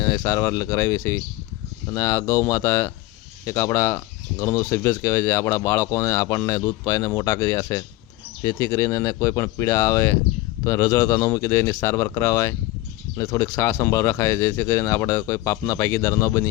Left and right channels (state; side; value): quieter; right; 17.9 dB